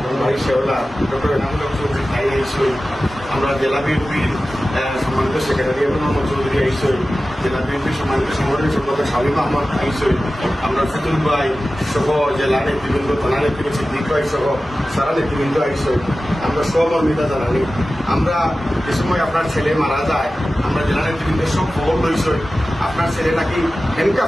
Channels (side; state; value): both; normal; correlation 0.95